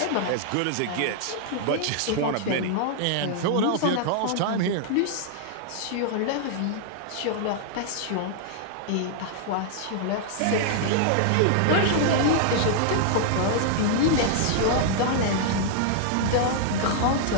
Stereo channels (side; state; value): both; different; correlation -0.01